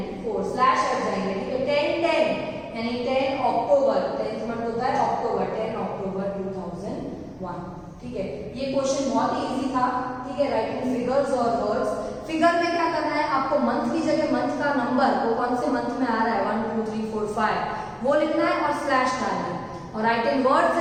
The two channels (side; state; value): both; identical; correlation 1.00